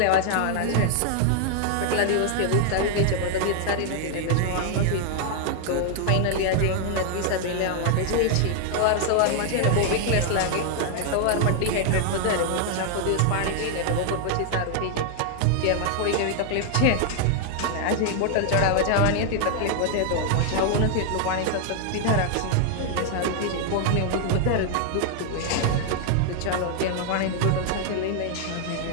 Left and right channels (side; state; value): both; different; correlation 0.00